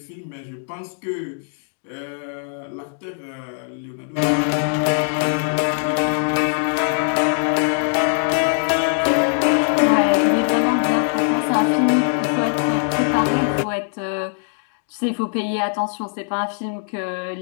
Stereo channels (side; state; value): right; silent; 65 dB below the other